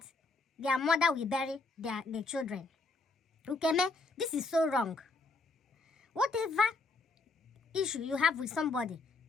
their mother will bury their children. Ukeme, this is so wrong. Whatever issue you have with somebody,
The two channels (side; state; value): right; quieter; 3.5 dB